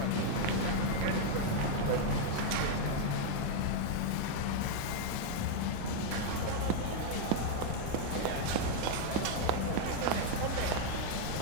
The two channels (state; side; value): different; both; correlation 0.00